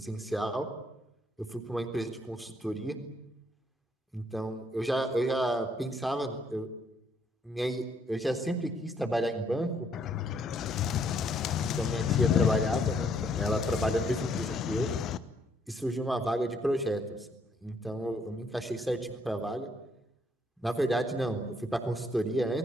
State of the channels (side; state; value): both; normal; correlation 0.68